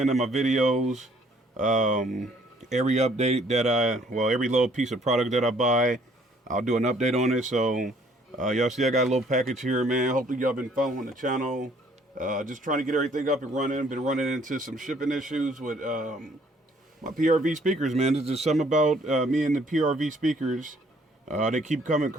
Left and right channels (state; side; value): normal; both; correlation 0.62